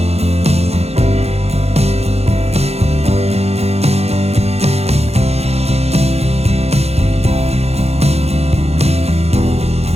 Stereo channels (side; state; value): left; late; 0.30 ms